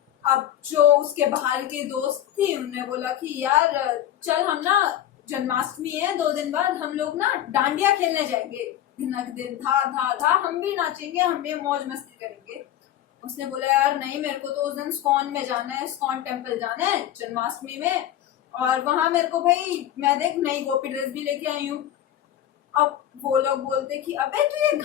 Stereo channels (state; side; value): quieter; right; 11.8 dB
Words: अब जो उसके बाहर की दोस्त थी उन्होंने बोला कि यार चल हम ना, जन्माष्टमी है 2 दिन बाद, हम लोग ना डांडिया खेलने जाएंगे, दिनक दिन था था था, हम भी नाचेंगे, हम भी मौज मस्ती करेंगे। उसने बोला यार नहीं, मेरे को तो उस दिन स्कॉन में जाना है, स्कॉन टेम्पल जाना है जन्माष्टमी में, और वहां मेरे को भाई, मैं देख नई गोपी ड्रेस भी लेके आई हूँ। अब वो लोग बोलते कि अबे तू ये